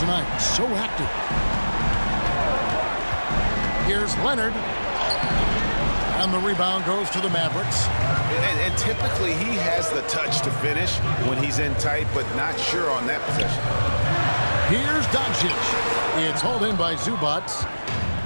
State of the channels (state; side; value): inverted; both; correlation -1.00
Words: So active. Here's Leonard. And the rebound goes to the Mavericks. And typically he has the touch to finish when he's in tight, but not sure on that possession. Here's Doncic. It's hauled in by Zubac.